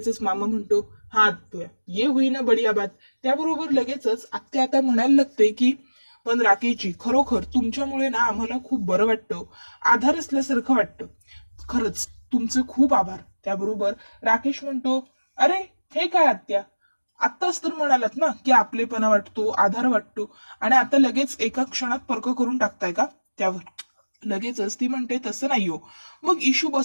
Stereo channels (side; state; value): both; inverted; correlation -1.00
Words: मामा म्हणतो, हा आत्या ये होईना बढिया बात. त्याबरोबर लगेचच आत्या आता म्हणायला लागते की पण राकेशजी खरोखर तुमच्यामुळे ना आम्हाला खूप बरं वाटतं, आधार असल्यासारखं वाटतं. खरंच तुमचे खूप आभार. त्याबरोबर राकेश म्हणतो, अरे हे काय आत्या, आत्ताच तर म्हणालात ना की आपलेपणा वाटतो, आधार वाटतो, आणि आता लगेच एका क्षणात पर्क करून टाकताय का? त्यावर लगेचच ती म्हणते, तसं नाही हो. मग इशू